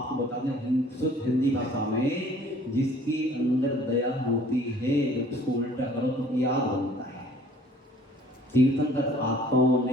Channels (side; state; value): both; normal; correlation 0.54